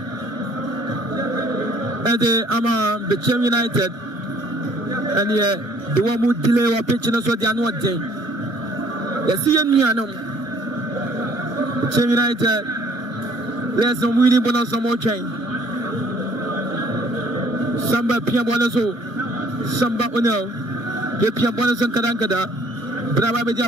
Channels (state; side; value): late; left; 1.1 ms